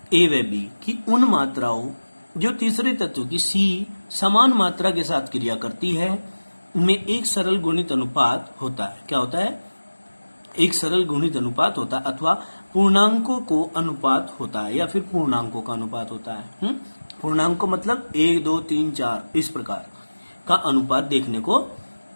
A व B की उन मात्राओं जो तीसरे तत्व की C समान मात्रा के साथ क्रिया करती है में एक सरल गुणित अनुपात होता है। क्या होता है? एक सरल गुणित अनुपात होता है, अथवा पूर्णांकों को अनुपात होता है, या फिर पूर्णांकों का अनुपात होता है। पूर्णांक मतलब 1, 2, 3, 4 इस प्रकार का अनुपात देखने को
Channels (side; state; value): both; inverted; correlation -1.00